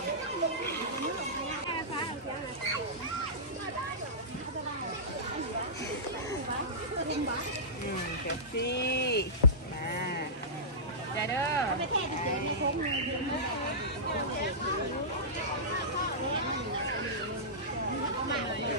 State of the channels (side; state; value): both; normal; correlation -0.17